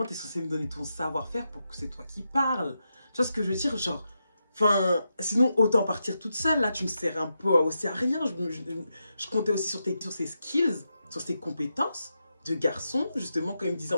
tu es censé me donner ton savoir-faire pour que c'est toi qui parles. Tu vois ce que je veux dire? Genre, enfin, sinon, autant partir toute seule. Là, tu me sers un peu aussi à rien. Je comptais aussi sur ses skills, sur ses compétences de garçon, justement, quand il me disait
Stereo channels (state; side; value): inverted; both; correlation -0.86